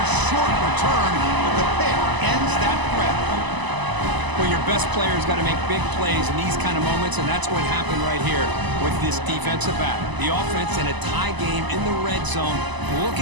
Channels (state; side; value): late; left; 1.0 ms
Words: short return, but the pick ends that threat. Well, your best player's got to make big plays in these kind of moments, and that's what happened right here with this defensive back. The offense in a tie game in the red zone,